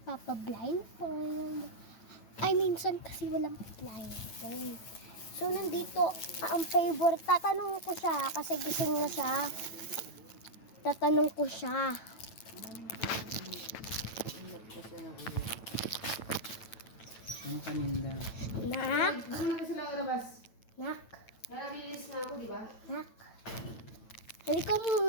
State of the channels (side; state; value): right; late; 9.0 ms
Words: papa-blindfold. Ay, minsan kasi walang blindfold. So nandito ang favorite. Tatanong ko siya kasi gising na siya. Tatanong ko siya. Ang paninda. Nak? Ano na sila labas? Nak? Nalabilis na ako, di ba? Nak? Halika